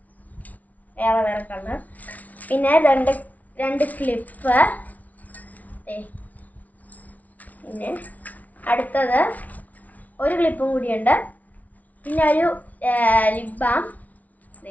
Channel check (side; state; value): right; late; 0.072 ms